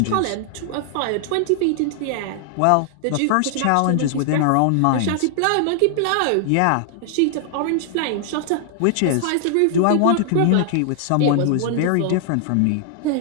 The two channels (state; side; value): different; both; correlation 0.00